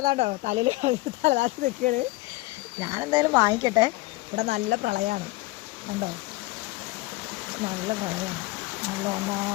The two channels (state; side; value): quieter; right; 21.1 dB